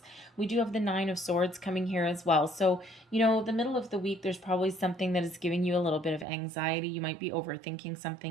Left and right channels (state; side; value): drops out; left; at 6.2 s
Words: We do have the Nine of Swords coming here as well. So, the middle of the week, there's probably something that is giving you a little bit of anxiety. You might be overthinking